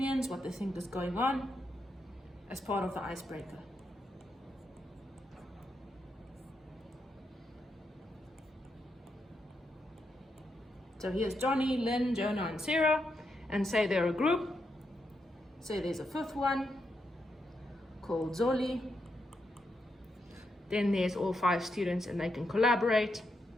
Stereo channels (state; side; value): normal; both; correlation 0.83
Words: what they think is going on, as part of the icebreaker. So here's Johnny, Lynn, Jonah, and Sarah, and say they're a group. Say there's a 5th one called Zoli. Then there's all 5 students, and they can collaborate